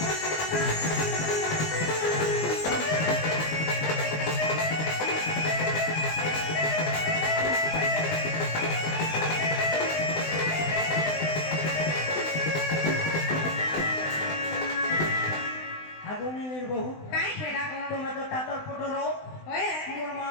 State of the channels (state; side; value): late; right; 20 ms